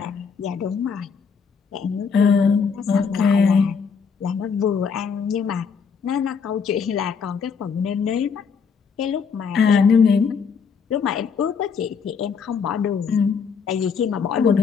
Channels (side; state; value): right; quieter; 6.0 dB